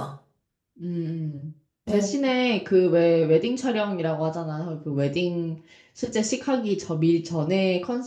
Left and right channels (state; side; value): identical; both; correlation 1.00